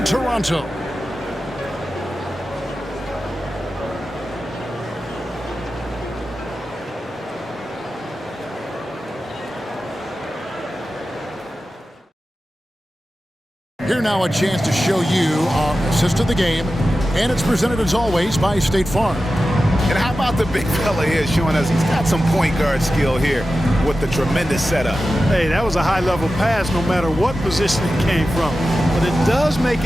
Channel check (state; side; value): normal; both; correlation 0.93